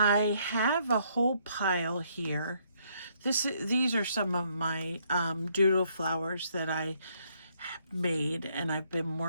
have a whole pile here. These are some of my doodle flowers that I made, and I've been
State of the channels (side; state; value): both; inverted; correlation -0.70